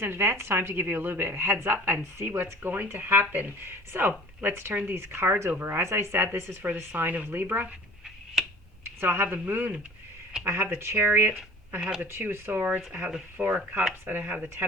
in advance time to give you a little bit of a heads up and see what's going to happen. So let's turn these cards over. As I said, this is for the sign of Libra. So I have the Moon, I have the Chariot, I have the Two of Swords, I have the Four of Cups, and I have the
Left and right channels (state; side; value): normal; both; correlation 0.45